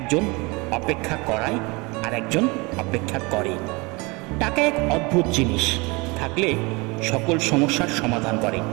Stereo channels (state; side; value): quieter; left; 26.4 dB